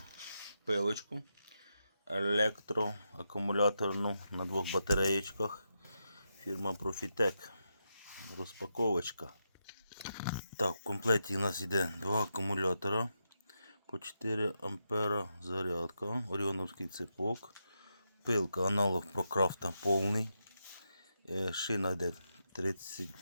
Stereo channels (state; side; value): inverted; both; correlation -0.85